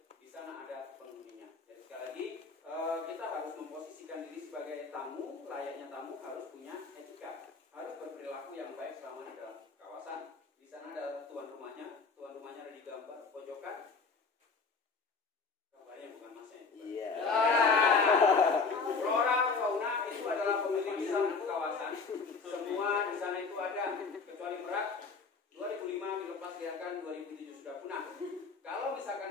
di sana ada penghuninya. Jadi sekali lagi kita harus memposisikan diri sebagai tamu, layaknya tamu harus punya etika, harus berperilaku yang baik selama di dalam kawasan. Di sana ada tuan rumahnya ada di gambar pojokan. Gambarnya bukan masnya. Iya. Flora, fauna itu adalah pemilik di sana kawasan. Semua di sana itu ada, kecuali Merak. 2005 dilepas liarkan, 2007 sudah punah. Kalau misalkan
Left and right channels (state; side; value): quieter; right; 4.6 dB